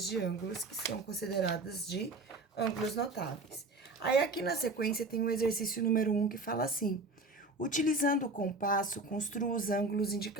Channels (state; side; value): quieter; left; 3.1 dB